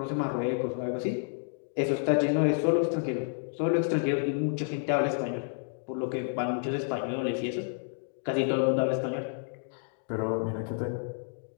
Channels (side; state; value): right; silent; digital silence